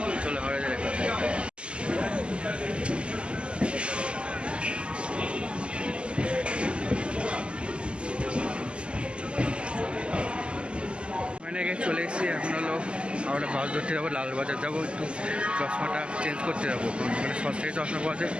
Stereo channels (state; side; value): late; left; 0.052 ms